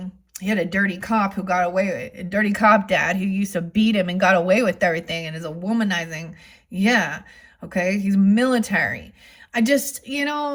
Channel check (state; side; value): identical; both; correlation 1.00